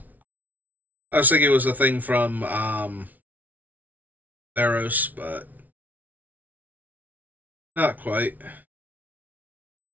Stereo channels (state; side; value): late; left; 0.077 ms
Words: I was thinking it was a thing from Theros, but not quite.